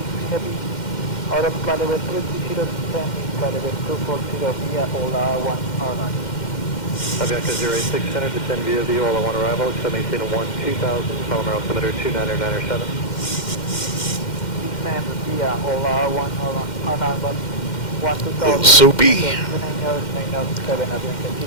Heavy, out of flight level 20 descending, flight level 240 via Ola 109. Avianca 086 Center, descend via the Ola 1 arrival, maintain 2000, Palomar altimeter 2997. Descend via Ola 109, 1000. Little soupy.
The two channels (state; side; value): late; right; 2.1 ms